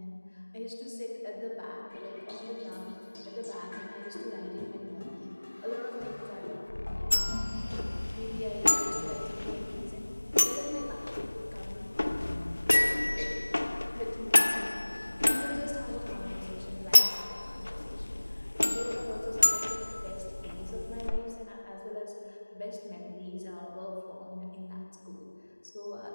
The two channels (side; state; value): both; inverted; correlation -1.00